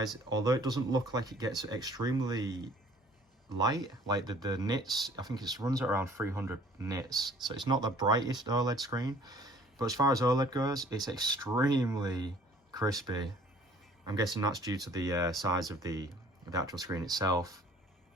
although it doesn't look like it gets extremely light, like the nits, I think it runs at around 300 nits, so it's not the brightest OLED screen, but as far as OLED goes, it's extremely crispy. I'm guessing that's due to the size of the actual screen itself.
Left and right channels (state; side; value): normal; both; correlation 0.54